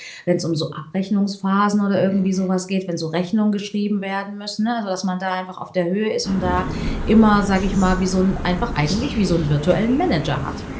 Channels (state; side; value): identical; both; correlation 1.00